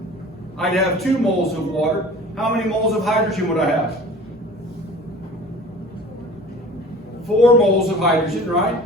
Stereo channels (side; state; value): both; normal; correlation 0.43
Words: I'd have 2 moles of water. How many moles of hydrogen would I have? 4 moles of hydrogen, right?